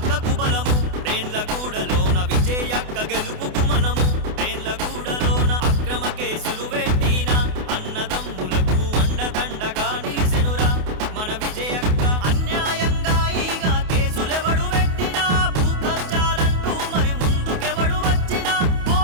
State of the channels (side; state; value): left; late; 28 ms